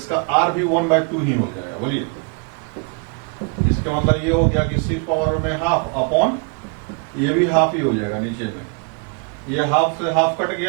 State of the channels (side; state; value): left; quieter; 36.8 dB